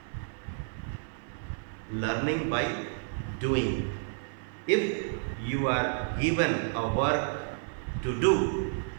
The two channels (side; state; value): left; silent; 57 dB below the other